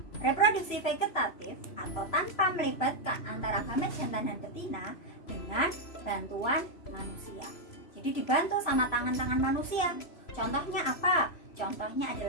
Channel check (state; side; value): late; right; 3.0 ms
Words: reproduksi vegetatif atau tanpa melibatkan antara gamet jantan dan betina dengan bantuan manusia. Jadi dibantu sama tangan-tangan manusia. Contohnya apa? Contohnya